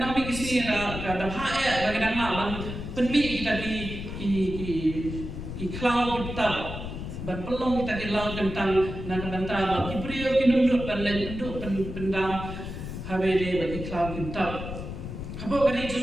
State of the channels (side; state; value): left; noise; rumble, 7 dB below the sound